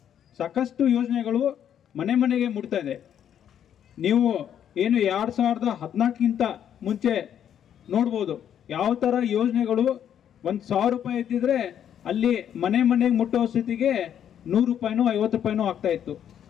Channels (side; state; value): right; quieter; 9.5 dB